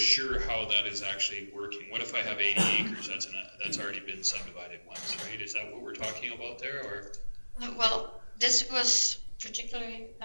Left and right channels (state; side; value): inverted; both; correlation -1.00